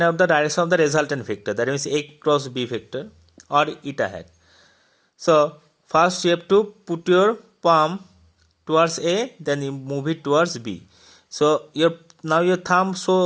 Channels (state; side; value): identical; both; correlation 1.00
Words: out the direction of the resultant vector, that means A cross B vector or eta hat. So first you have to put your palm towards A, then you move it towards B. So now your thumb